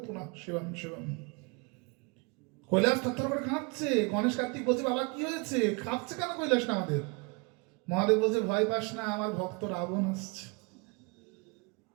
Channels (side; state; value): left; quieter; 30.2 dB